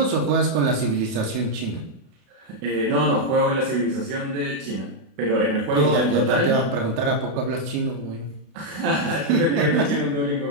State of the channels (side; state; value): left; late; 32 ms